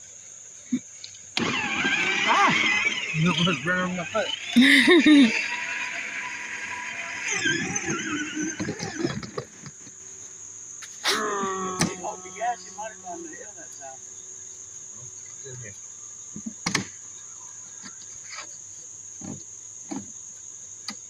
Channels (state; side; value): identical; both; correlation 1.00